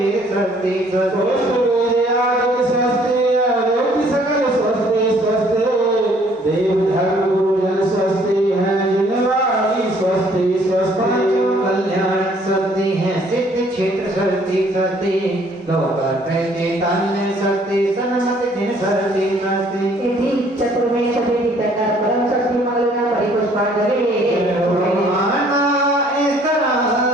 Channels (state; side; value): normal; both; correlation 0.60